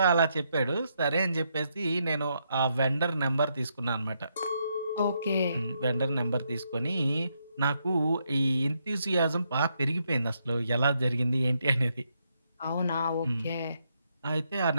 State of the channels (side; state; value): both; inverted; correlation -0.78